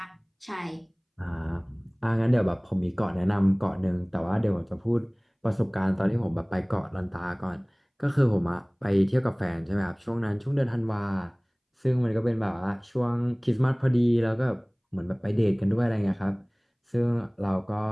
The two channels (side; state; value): both; identical; correlation 1.00